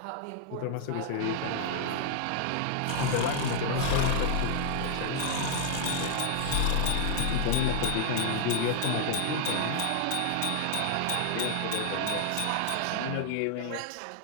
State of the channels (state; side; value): different; both; correlation 0.00